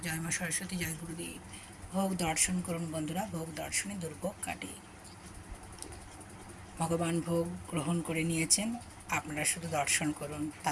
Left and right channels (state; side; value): identical; both; correlation 1.00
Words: জয় মা সরস্বতী, জয় গুরুদেব। ভোগ দর্শন করুন বন্ধুরা, ভোগ দর্শনে দুর্ভোগ কাটে। ভগবান ভোগ গ্রহণ করে নিয়েছেন, আপনারা শুধু দর্শন করুন,